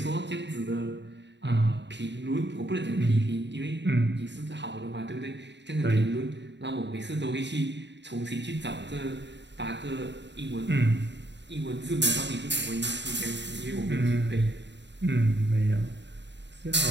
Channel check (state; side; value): late; left; 0.52 ms